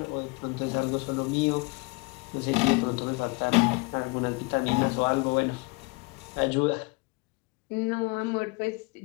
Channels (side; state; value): right; quieter; 27.5 dB